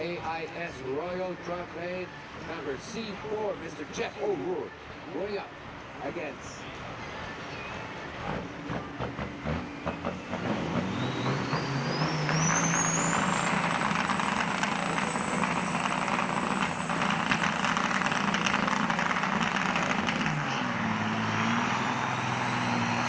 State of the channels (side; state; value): both; identical; correlation 1.00